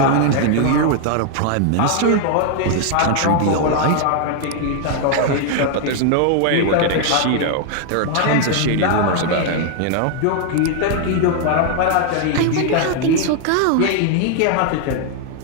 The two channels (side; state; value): both; different; correlation 0.00